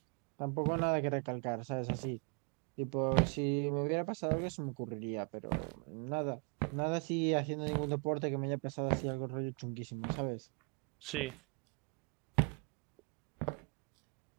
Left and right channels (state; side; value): quieter; left; 35.7 dB